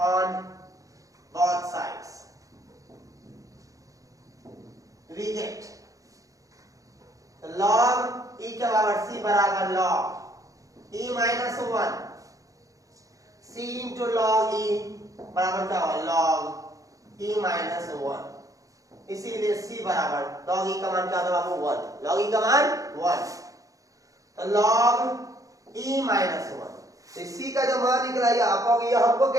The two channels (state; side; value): late; left; 0.16 ms